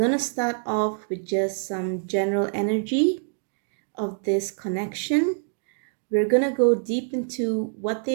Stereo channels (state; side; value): silent; left; 61 dB below the other